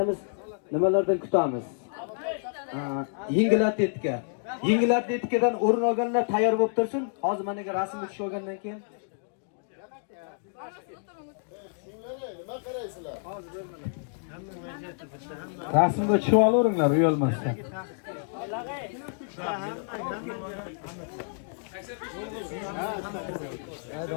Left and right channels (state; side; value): silent; right; digital silence